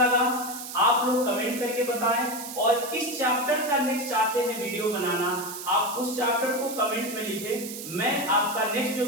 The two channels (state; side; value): noise; right; hiss, 10 dB below the sound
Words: आप लोग कमेंट करके बताएं, और किस चैप्टर का नेक्स्ट चाहते हैं वीडियो बनाना आप उस चैप्टर को कमेंट में लिखें। मैं आपका नेक्स्ट जो